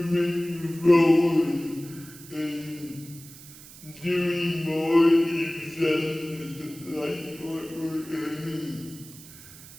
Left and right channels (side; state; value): right; noise; hiss, 18 dB below the sound